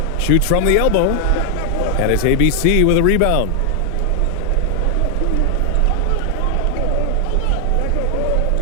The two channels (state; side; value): different; both; correlation 0.00